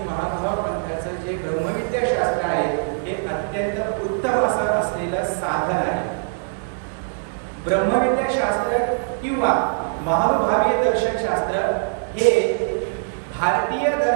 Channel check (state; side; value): silent; left; 64 dB below the other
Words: महानुभाव पंथाचं जे ब्रह्मविद्या शास्त्र आहे हे अत्यंत उत्तम असं असलेलं साधन आहे. ब्रह्मविद्या शास्त्र किंवा महानुभावीय दर्शन शास्त्र हे भारतीय